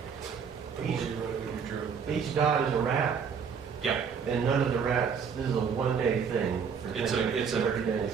Each dot is a rat, Yeah, and none of the rats, this is a one-day thing. For it's 10 days, 30 days.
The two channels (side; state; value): left; quieter; 6.6 dB